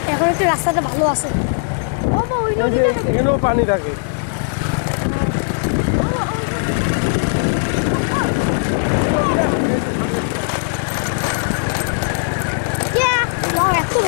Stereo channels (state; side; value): silent; right; digital silence